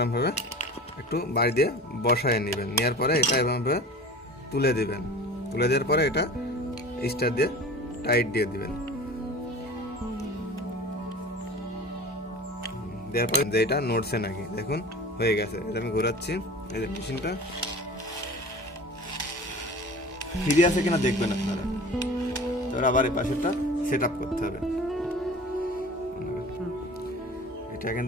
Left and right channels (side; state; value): both; normal; correlation 0.38